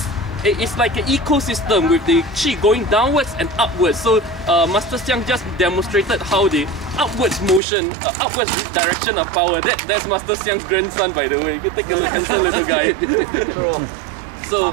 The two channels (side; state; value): left; drops out; at 7.6 s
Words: like an ecosystem with the qi going downwards and upwards. So Master Xiang just demonstrated how the upwards motion, upwards direction of power. That's Master Xiang's grandson, by the way. You can take a look, handsome little guy. So